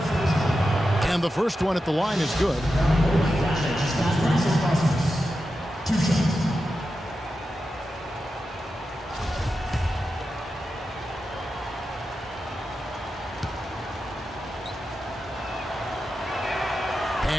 And the first one at the line is good.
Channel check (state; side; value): normal; both; correlation 0.90